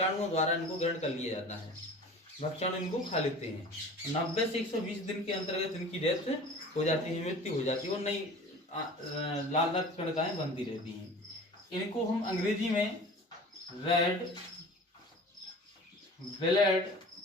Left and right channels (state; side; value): normal; both; correlation 0.41